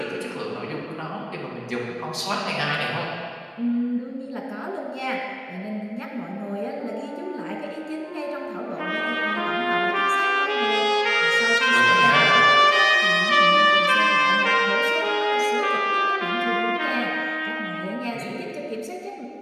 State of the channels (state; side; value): identical; both; correlation 1.00